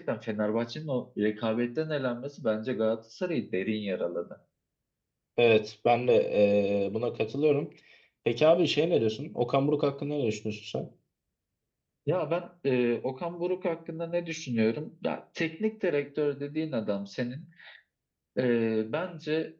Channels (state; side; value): identical; both; correlation 1.00